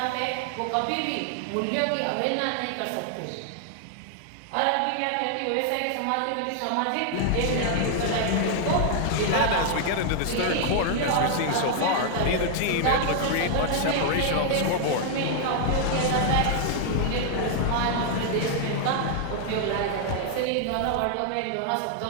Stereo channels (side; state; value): both; different; correlation 0.00